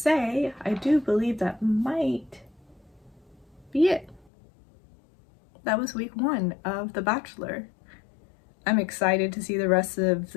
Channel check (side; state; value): right; drops out; at 4.3 s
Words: I do believe that might be it. That was week 1 of The Bachelor. I'm excited to see the rest of